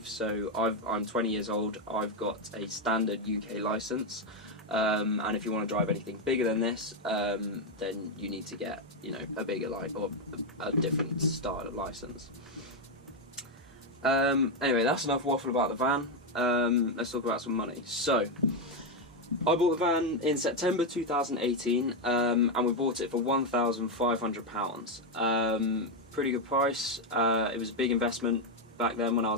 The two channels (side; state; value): both; normal; correlation 0.04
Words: So I'm 20 years old, I've got a standard UK licence, and if you want to drive anything bigger than this, then you need to get, a bigger or a different style of licence. Anyway, that's enough waffle about the van. Let's talk about some money. So I bought the van in September 2018, and we bought it for £1,500. Pretty good price. It was a big investment back then when I